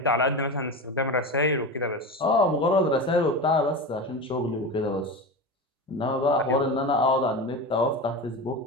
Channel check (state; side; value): normal; both; correlation 0.24